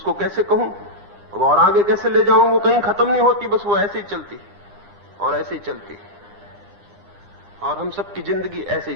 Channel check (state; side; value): late; left; 9.9 ms